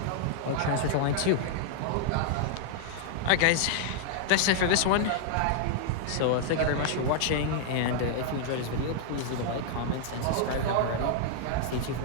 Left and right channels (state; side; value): different; both; correlation -0.01